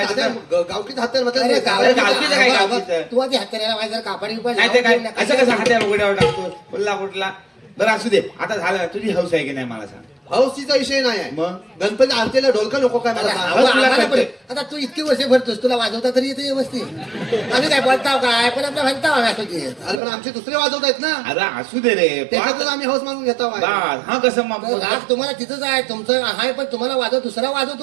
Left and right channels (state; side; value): drops out; left; at 20.0 s